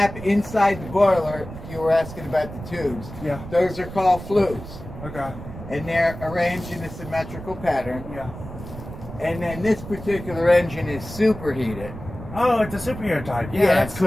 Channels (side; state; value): right; noise; rumble, 12 dB below the sound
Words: inside the boiler, you were asking about the tubes. Yeah. Those are called flues. Okay. And they're arranged in a symmetrical pattern. Yeah. And then this particular engine is superheated. Oh, it's a superheater type. Yeah, that's so